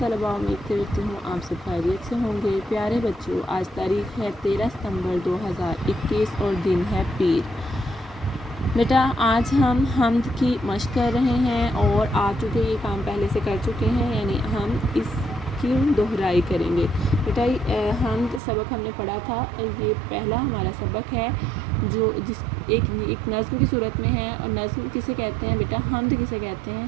उम्मीद करती हूँ आप सब खैरियत से होंगे। प्यारे बच्चों, आज तारीख़ है 13 सितंबर 2021 और दिन है पीर। बेटा आज हम हम्द की मश्क कर रहे हैं और आ चुके ये काम पहले से कर चुके हैं, यानी हम इसकी दोहराई करेंगे। बेटा हम्द सबक हमने पढ़ा था, ये पहला हमारा सबक है जो एक नज़्म की सूरत में है। और नज़्म किसे कहते हैं बेटा? हम्द किसे कहते हैं?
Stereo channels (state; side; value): drops out; left; at 18.4 s